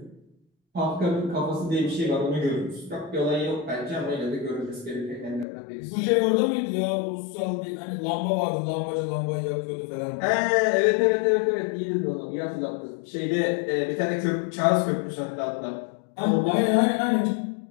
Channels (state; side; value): drops out; right; at 5.5 s